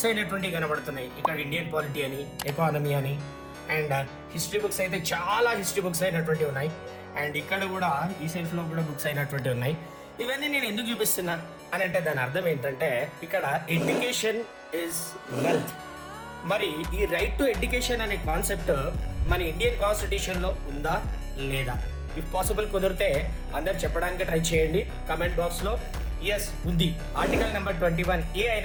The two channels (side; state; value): both; identical; correlation 1.00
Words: అయినటువంటి కనబడుతున్నాయి. ఇక్కడ ఇండియన్ పాలిటీ అని, ఎకానమీ అని, అండ్ హిస్టరీ బుక్స్ అయితే చాలా హిస్టరీ బుక్స్ అయినటువంటి ఉన్నాయి. అండ్ ఇక్కడ కూడా ఈ సెల్ఫ్ లో కూడా బుక్స్ అయినటువంటి ఉన్నాయి. ఇవన్నీ నేను ఎందుకు చూపిస్తున్నా అని అంటే దాని అర్థం ఏంటంటే, ఇక్కడ ఎడ్యుకేషన్ ఇస్ వెల్త్. మరి ఈ రైట్ టు ఎడ్యుకేషన్ అనే కాన్సెప్ట్ మన ఇండియన్ కాన్స్టిట్యూషన్ లో ఉందా లేదా? ఇఫ్ పాసిబుల్ కుదిరితే అందరు చెప్పడానికి ట్రై చేయండి కమెంట్ బాక్స్ లో. ఎస్, ఉంది. Article number 21A